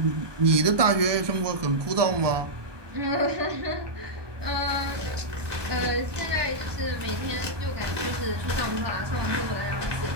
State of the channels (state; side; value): late; left; 1.2 ms